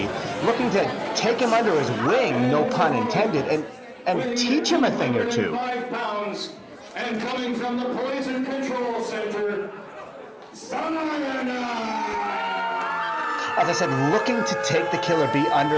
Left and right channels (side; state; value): both; identical; correlation 1.00